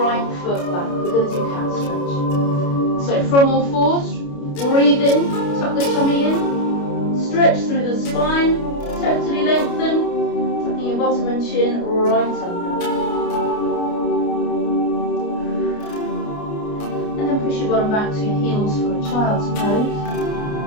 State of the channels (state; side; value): late; right; 29 ms